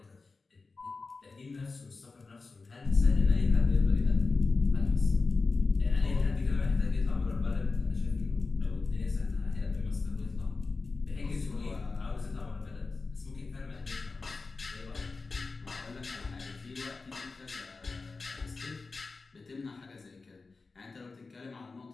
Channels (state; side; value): quieter; right; 4.0 dB